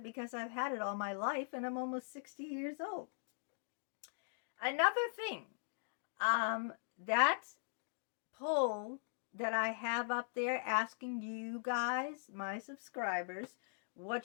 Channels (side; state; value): right; silent; digital silence